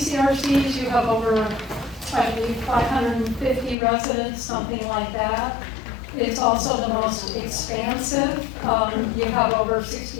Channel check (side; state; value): right; drops out; at 3.8 s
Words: You have over, I believe, 550 residents, something like that. It's also the most expansive. You have over